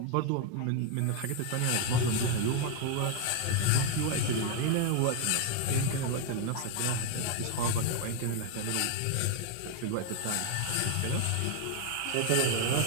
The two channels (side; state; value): both; different; correlation 0.01